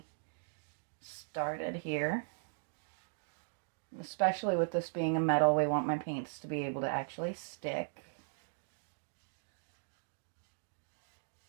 started here. Especially with this being a metal, we want my paints to be able to actually stick.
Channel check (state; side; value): silent; left; digital silence